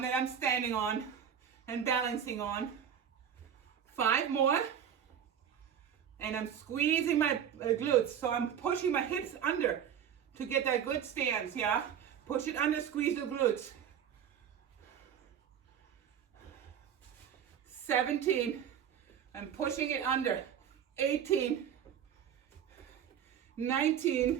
that I'm standing on and balancing on. 5 more, and I'm squeezing my glutes. So I'm pushing my hips under to get that good stance, yeah? Push it under, squeeze the glutes. 17, I'm pushing it under. 18,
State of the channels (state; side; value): quieter; left; 8.7 dB